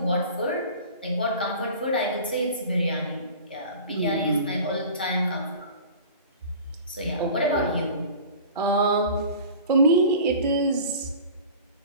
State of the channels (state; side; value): inverted; both; correlation -0.41